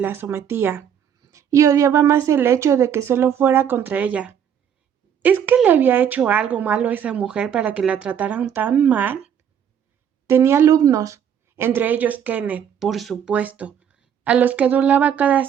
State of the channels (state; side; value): quieter; left; 8.7 dB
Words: sometía, y odiaba más el hecho de que solo fuera contra ella. ¿Es que le había hecho algo malo a esa mujer para que la trataran tan mal? Tenía alumnos, entre ellos Kenneth, por supuesto, a los que adulaba cada